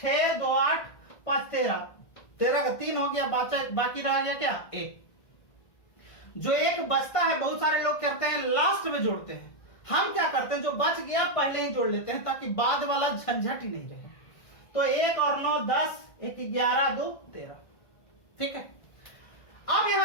2 8 5 13 13 का 3 हो गया, बाकी रह गया क्या 1। जो एक बचता है बहुत सारे लोग करते हैं लास्ट में जोड़ते हैं, हम क्या करते हैं जो बच गया पहले ही जोड़ लेते हैं ताकि बाद वाला झंझट ही नहीं रहे। तो 1 और 9 10 1 11 2 13, ठीक है। अब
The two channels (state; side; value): late; right; 1.5 ms